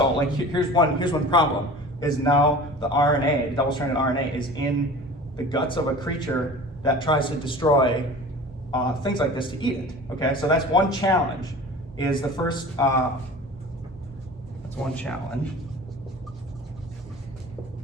like here's one problem is now the RNA, the double-stranded RNA, is in the guts of a creature that tries to destroy things like this to eat it. Okay, so that's one challenge. Is the first that's one challenge.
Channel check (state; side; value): normal; both; correlation 0.39